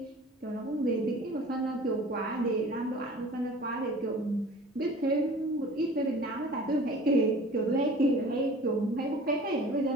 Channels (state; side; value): normal; both; correlation 0.44